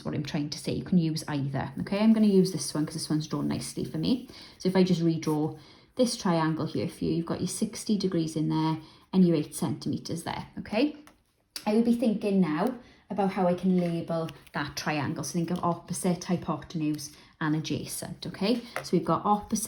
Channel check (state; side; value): identical; both; correlation 1.00